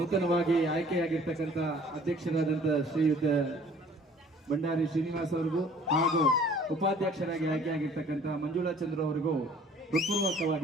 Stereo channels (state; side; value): normal; both; correlation 0.54